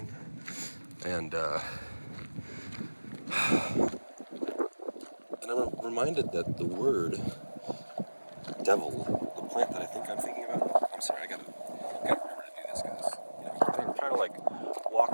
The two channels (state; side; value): inverted; both; correlation -1.00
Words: and I'm reminded that the word devil, the plant that I think I'm thinking about. I'm sorry, I gotta remember to do this, guys. Trying to like